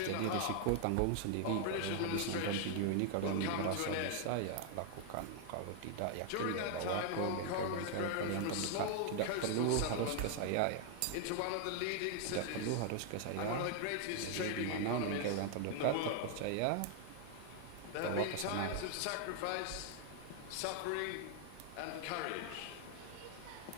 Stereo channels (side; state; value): both; different; correlation 0.00